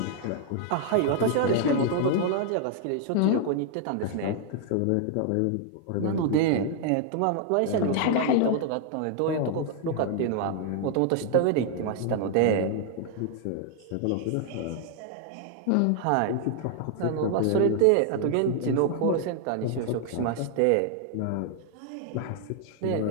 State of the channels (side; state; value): both; different; correlation 0.00